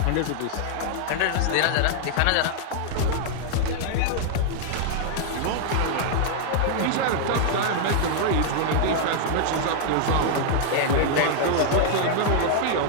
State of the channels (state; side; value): different; both; correlation -0.01